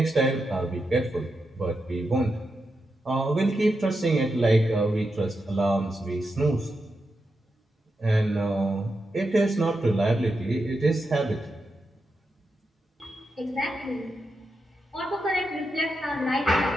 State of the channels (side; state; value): both; normal; correlation 0.87